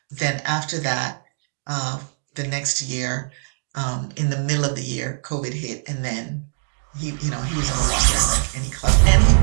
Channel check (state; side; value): silent; left; digital silence